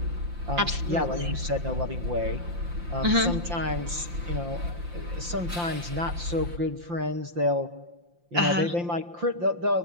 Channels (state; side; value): late; left; 5.8 ms